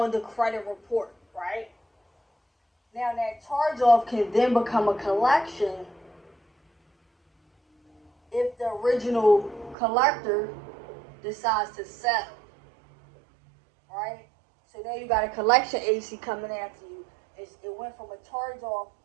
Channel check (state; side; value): drops out; left; at 9.8 s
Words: the credit report, right? Now, that charge-off can then become a collection if the original collector decides to settle, right? So now you got a collection agency coming after you. It went from a charge-off